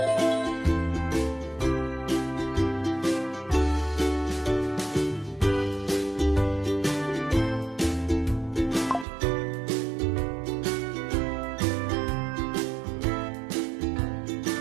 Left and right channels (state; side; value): drops out; left; at 9.1 s